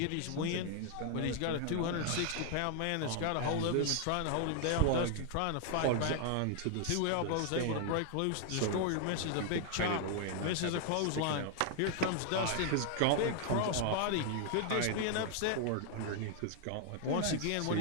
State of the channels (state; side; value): different; both; correlation 0.00